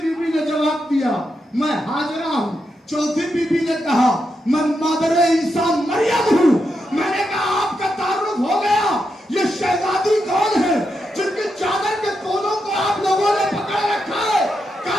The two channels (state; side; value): normal; both; correlation 0.84